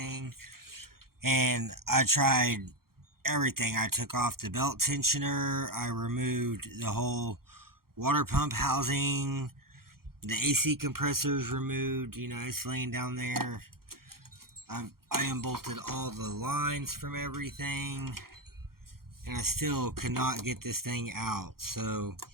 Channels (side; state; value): left; late; 0.93 ms